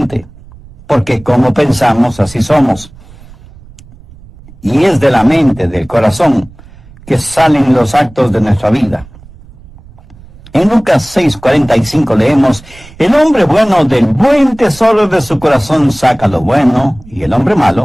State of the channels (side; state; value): right; noise; rumble, 22 dB below the sound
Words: porque como pensamos, así somos. Y es de la mente, del corazón, que salen los actos de nuestra vida. En Lucas 6:45 leemos: el hombre bueno del buen tesoro de su corazón saca lo bueno, y el hombre